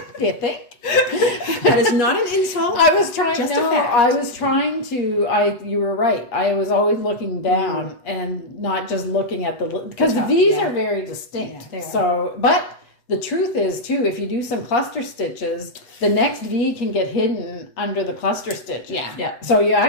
Do you think? That is not an insult. I was trying. Just a fact. I was trying to. You were right. I was always looking down and not just looking at because the V's are very distinct. Yeah, so, but the truth is too, if you do some cluster stitches, the next V can get hidden under the cluster stitch. Yeah. So you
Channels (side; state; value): right; late; 8.0 ms